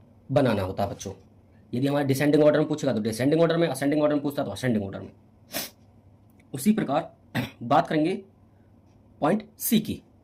बनाना होता है बच्चों। यदि हमारे डिसेंडिंग ऑर्डर में पूछेगा तो डिसेंडिंग ऑर्डर में, असेंडिंग ऑर्डर में पूछता है तो असेंडिंग ऑर्डर में। उसी प्रकार बात करेंगे पॉइंट सी की।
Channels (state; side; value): identical; both; correlation 1.00